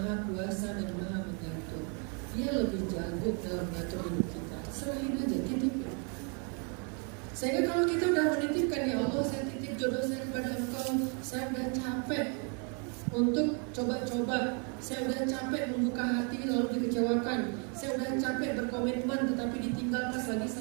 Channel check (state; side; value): quieter; left; 38.0 dB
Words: kuasa dan maha mengatur. Dia lebih jago dalam mengatur hidup kita. Serahin aja, titipin. Sehingga kalau kita udah menitipkan, ya Allah, saya titip jodoh saya kepada Engkau, saya udah capek untuk coba-coba, saya udah capek membuka hati lalu dikecewakan, saya udah capek berkomitmen tetapi ditinggal pas lagi